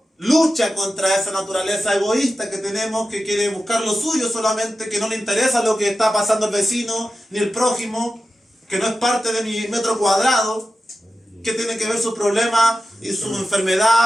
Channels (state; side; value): normal; both; correlation 0.93